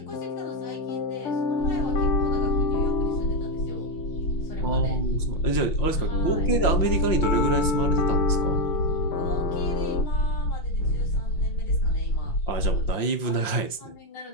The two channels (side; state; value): right; late; 5.8 ms